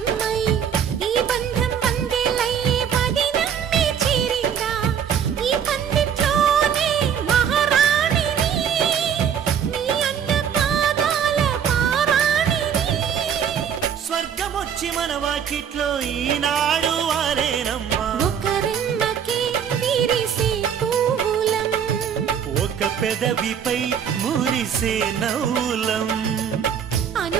ఈ బంధం వందేలయ్యే వదినమ్మే చేరిందా ఈ పందిట్లోనే మహారాణిని నీ అన్న పాదాల పారాణిని స్వర్గమొచ్చి మన వాకిట్లో ఈనాడు వారేనమ్మా ఒకరెమ్మకే విరిసే పూలం ఒక పెదవిపై మురిసే నవ్వులం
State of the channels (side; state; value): left; quieter; 8.2 dB